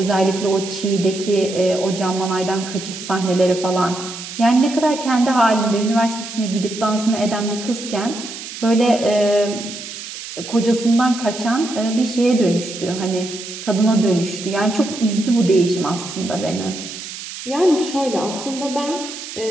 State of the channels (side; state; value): right; noise; hiss, 10 dB below the sound